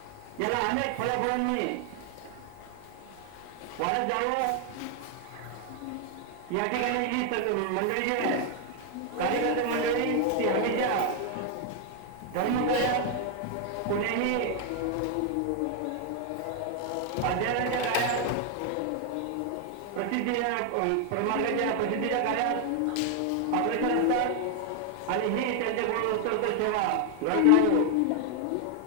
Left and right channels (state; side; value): different; both; correlation 0.00